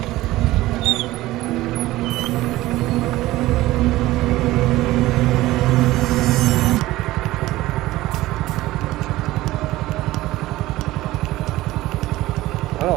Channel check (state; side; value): quieter; left; 17.2 dB